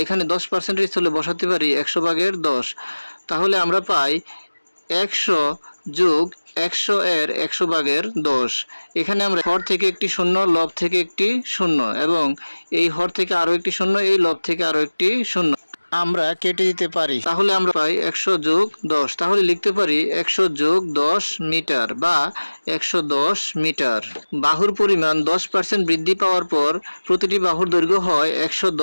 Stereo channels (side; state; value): both; inverted; correlation -1.00